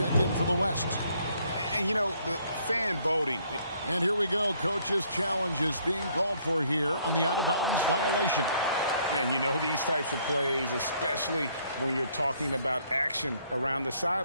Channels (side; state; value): both; inverted; correlation -0.66